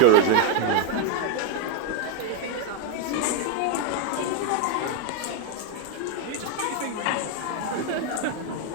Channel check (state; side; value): different; both; correlation 0.02